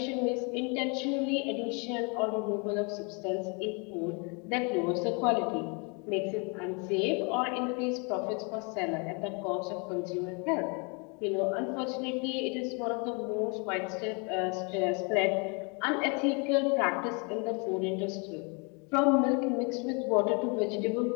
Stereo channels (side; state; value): right; quieter; 33.5 dB